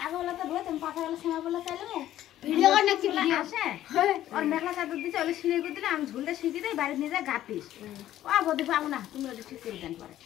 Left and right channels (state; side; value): quieter; right; 12.9 dB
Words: বলে তো ধুয়ে তুমি পাতা গেলে সময় বলে চাইলে ভিডিও করে নাকি ভিডিও আসে আর মেঘলা চাদর দিতে ওলে সিঁড়ি করে দিলে আমি ঝুলটা শিখি দেই বাড়ি নিয়ে যা গাপিস ও বদি পাবো না তুমি ওটা ঠিক করে দেন পরে